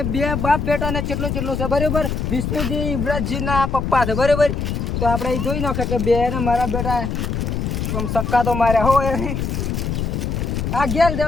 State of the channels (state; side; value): noise; left; rumble, 2 dB below the sound